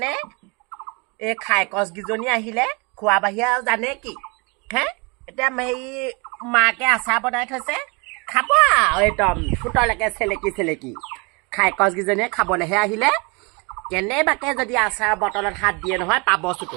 এই খাই কছকেইজনী আহিলে খোৱা বাহিৰে আৰু জানে কি হে এতিয়া হেৰি মাকে আচাৰ বনাই থৈছে খাব আৰু একদম ফুটলৈকে চেলেকি খাই কছকেইজনীয়ে খাবলৈহে আহিলে কেনেবাকে যদি আচাৰ বটলত হাত দিয়ে নহয় পাব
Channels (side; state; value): left; quieter; 29.9 dB